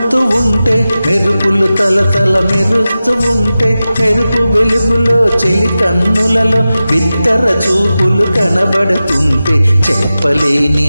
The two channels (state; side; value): inverted; both; correlation -0.94